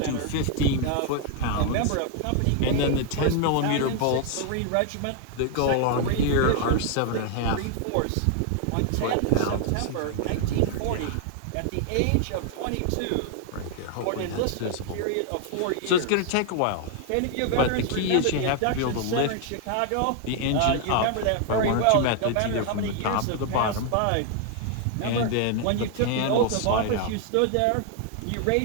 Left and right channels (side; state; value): both; different; correlation 0.00